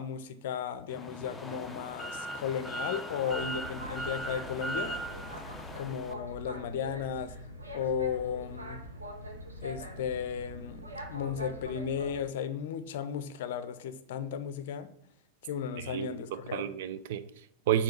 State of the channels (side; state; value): both; normal; correlation -0.19